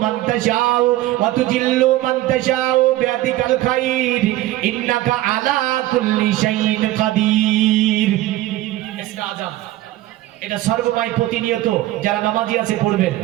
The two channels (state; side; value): quieter; left; 15.9 dB